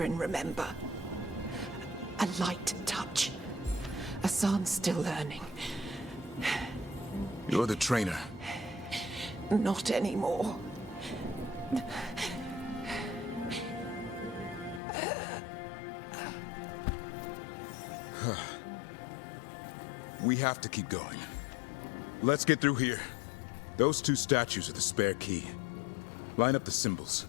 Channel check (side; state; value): right; drops out; at 14.8 s